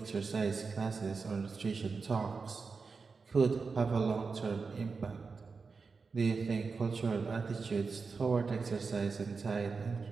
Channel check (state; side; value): quieter; left; 4.7 dB